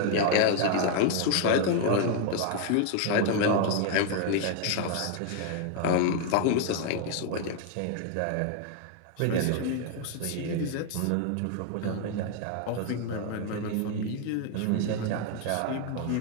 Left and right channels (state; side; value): different; both; correlation 0.00